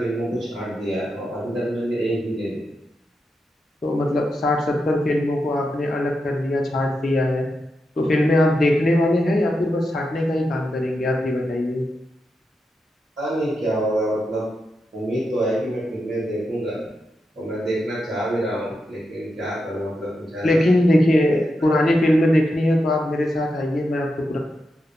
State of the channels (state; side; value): normal; both; correlation 0.87